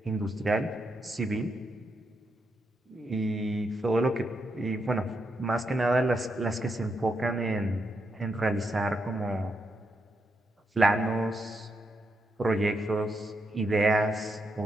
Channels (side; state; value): both; normal; correlation 0.82